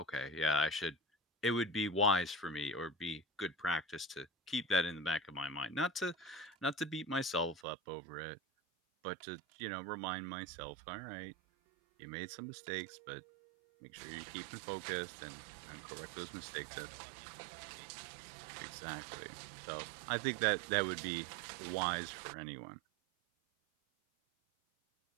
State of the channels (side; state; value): left; drops out; at 7.6 s